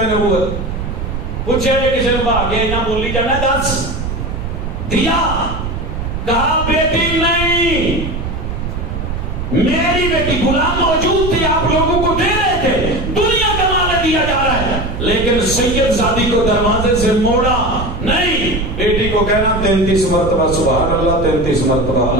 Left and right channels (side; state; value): right; noise; rumble, 4 dB below the sound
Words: نبوت. پوچھے کسی نے بھاگے نہ بولی جانا، دس دیا، کہا بیٹی نہیں، میری بیٹی. غلام موجود تھی، آپ لوگوں کو دے رہے تھے، دنیا کا مال دیا جا رہا ہے، لیکن سید زادی کو دروازے سے موڑا نہیں. بیٹی کو کہنا 33 مرتبہ سبحان اللہ، 33 مرتبہ